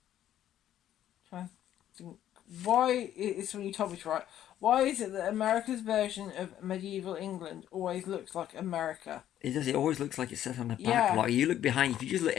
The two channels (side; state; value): right; quieter; 11.6 dB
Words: to think, why, it's when you told me to write, why is it that America's version of medieval England always looks like America? It does. It always looks like it's set on the back lot. You look behind. If you just look,